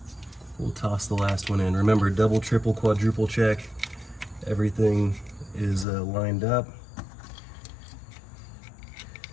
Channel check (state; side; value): drops out; right; at 5.9 s